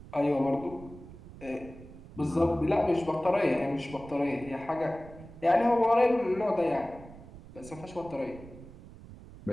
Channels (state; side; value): noise; right; rumble, 17 dB below the sound